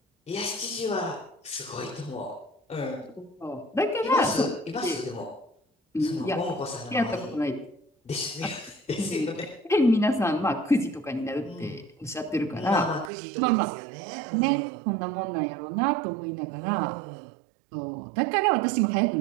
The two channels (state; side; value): drops out; left; at 13.1 s